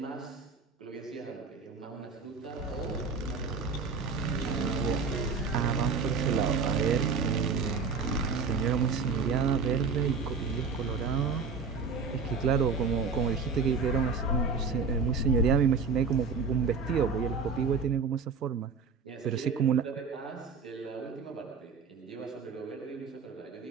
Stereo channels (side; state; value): left; quieter; 5.0 dB